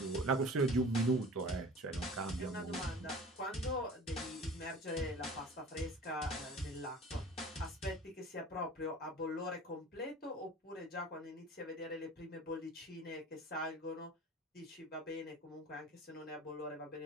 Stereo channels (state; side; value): normal; both; correlation 0.42